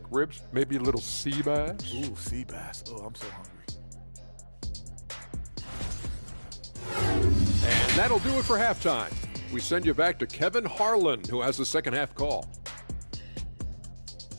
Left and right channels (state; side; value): inverted; both; correlation -1.00